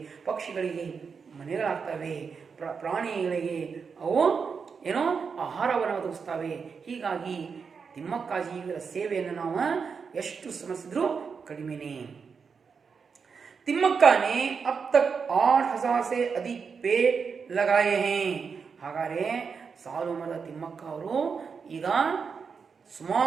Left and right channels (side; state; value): left; quieter; 5.7 dB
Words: ಪಕ್ಷಿಗಳಿಗೆ ಮನೆಗಳಾಗ್ತವೆ, ಪ್ರಾಣಿಗಳಿಗೆ ಅವು ಏನೋ ಆಹಾರವನ್ನು ಒದಗಿಸ್ತವೆ. ಹೀಗಾಗಿ ತಿಮ್ಮಕ್ಕಾಜಿ ಇವರ ಸೇವೆಯನ್ನು ನಾವು ಎಷ್ಟು ಸ್ಮರಿಸಿದ್ರೂ ಕಡಿಮೆನೇ. ತಿಮ್ಮಕ್ಕ ने अब तक 8,000 से अधिक पेड़ लगाए हैं. ಹಾಗಾದ್ರೆ ಸಾಲು ಮರದ ತಿಮ್ಮಕ್ಕ ಅವರು ಈಗ